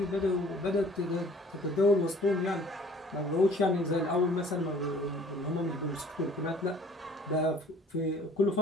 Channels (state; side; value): normal; both; correlation 0.53